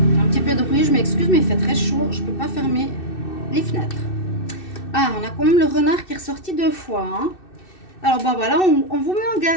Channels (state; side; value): late; right; 2.6 ms